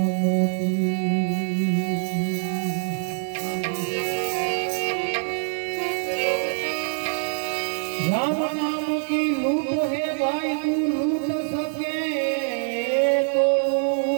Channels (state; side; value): silent; left; 62 dB below the other